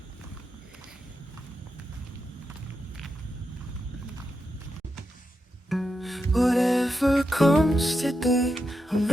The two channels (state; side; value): normal; both; correlation 0.87